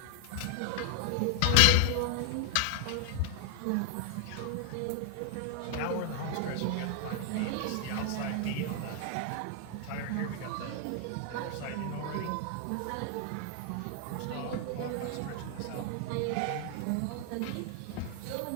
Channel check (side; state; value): both; different; correlation 0.00